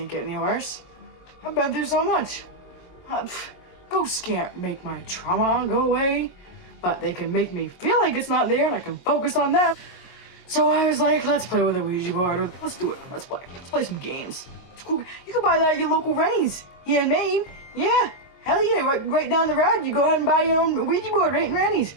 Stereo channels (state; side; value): late; right; 22 ms